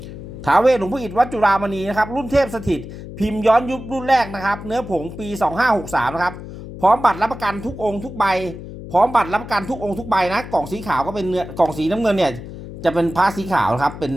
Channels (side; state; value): left; noise; hum, 12 dB below the sound